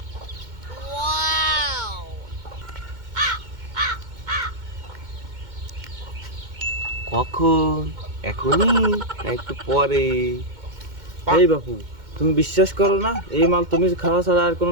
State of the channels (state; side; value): late; left; 2.1 ms